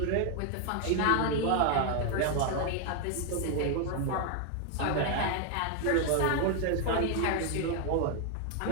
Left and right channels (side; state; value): both; different; correlation 0.01